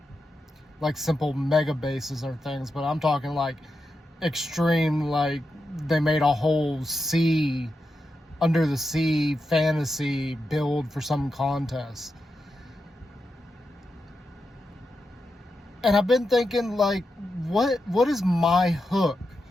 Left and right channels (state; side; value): normal; both; correlation 0.88